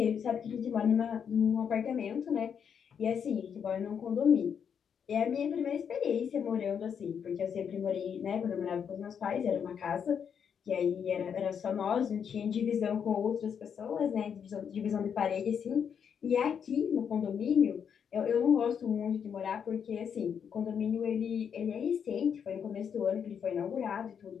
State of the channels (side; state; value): right; quieter; 7.5 dB